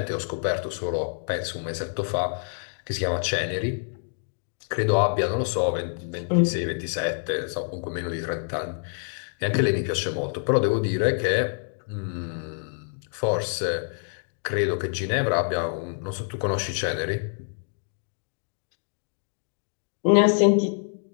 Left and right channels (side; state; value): right; silent; digital silence